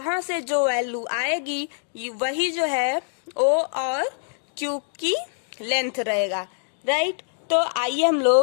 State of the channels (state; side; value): silent; right; digital silence